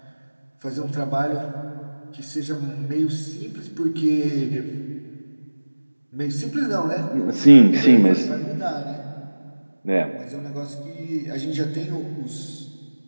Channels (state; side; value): inverted; both; correlation -1.00